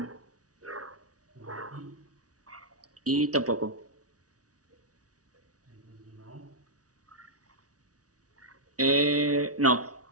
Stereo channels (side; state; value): left; late; 0.67 ms